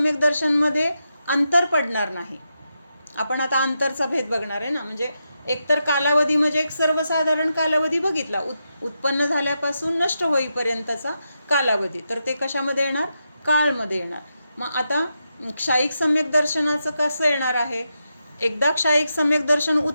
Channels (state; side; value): inverted; both; correlation -0.86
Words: दर्शनमध्ये अंतर पडणार नाही. आपण आता अंतरचा भेद बघणार आहे ना, म्हणजे एकतर कालावधी म्हणजे एक सर्वसाधारण कालावधी बघितला, उत्पन्न झाल्यापासून नष्ट होईपर्यंतचा कालावधी, तर ते कशामध्ये येणार? काळमध्ये येणार. मग आता क्षायिक सम्यक दर्शनाचं कसं येणार आहे? एकदा क्षायिक सम्यक दर्शन